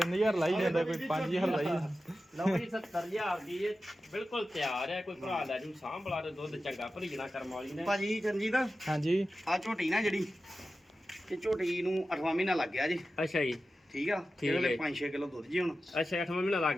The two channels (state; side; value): normal; both; correlation 0.93